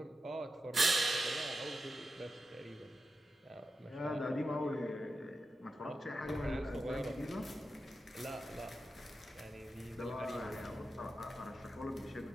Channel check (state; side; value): normal; both; correlation 0.90